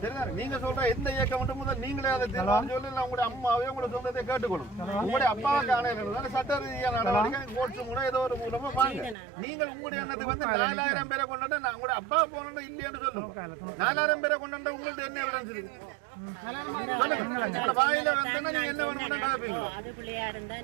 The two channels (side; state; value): left; drops out; at 9.2 s